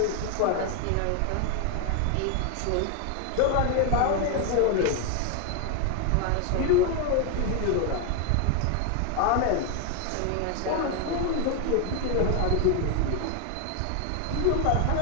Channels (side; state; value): both; different; correlation 0.01